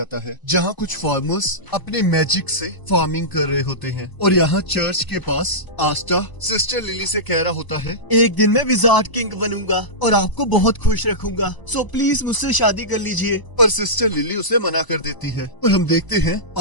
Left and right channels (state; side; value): late; right; 1.0 ms